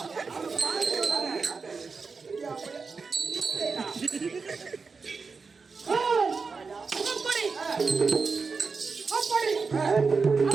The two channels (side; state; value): left; quieter; 4.8 dB